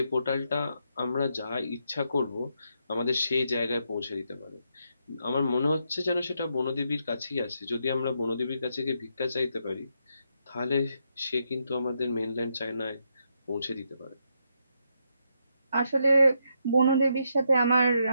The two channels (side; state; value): both; inverted; correlation -0.79